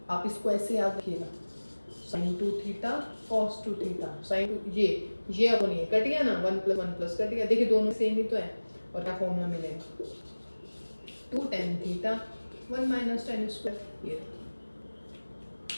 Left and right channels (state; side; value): inverted; both; correlation -1.00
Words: आप इसको ऐसे याद रखिएगा, sine 2 theta cos 2 theta, sine ये अपॉन ये कट गया ना, 1 प्लस कट गया। देखिए दोनों सेम ही तो है, और क्या फॉर्मूला मिलेगा 2 tan theta 1 minus tan square, ये